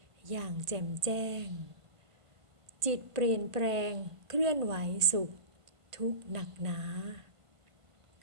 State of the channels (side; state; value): left; late; 1.5 ms